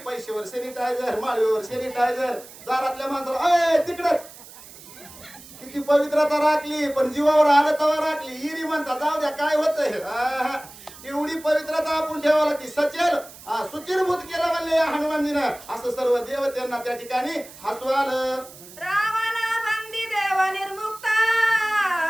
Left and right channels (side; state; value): right; noise; hiss, 18 dB below the sound